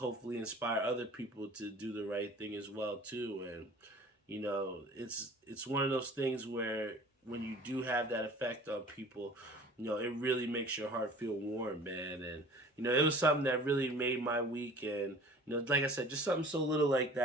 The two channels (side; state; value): both; normal; correlation 0.45